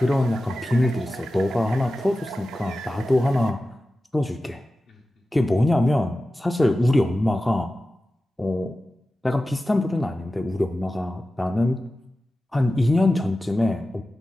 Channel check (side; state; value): both; normal; correlation 0.94